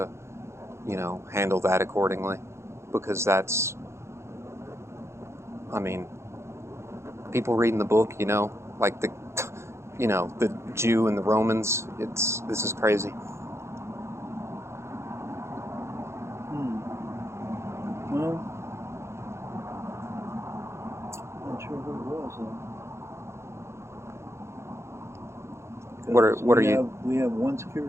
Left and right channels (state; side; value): late; left; 0.13 ms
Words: handle that accordingly. Because that's, I mean, people reading the book, like the Jew and the Romans. This is crazy. Well, not sure who it was. What are you? We have one